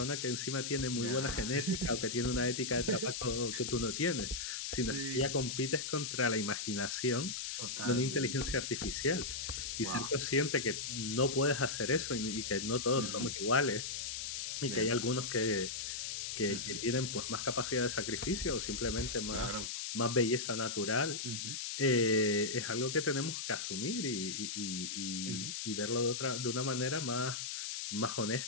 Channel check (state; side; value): noise; left; hiss, 4 dB below the sound